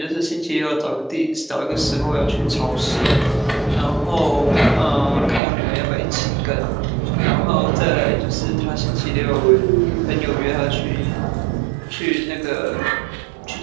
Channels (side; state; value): left; drops out; at 5.4 s